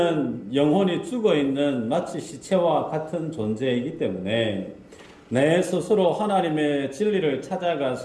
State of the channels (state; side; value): identical; both; correlation 1.00